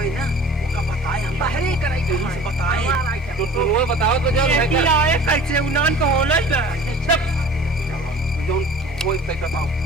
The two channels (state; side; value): normal; both; correlation 0.44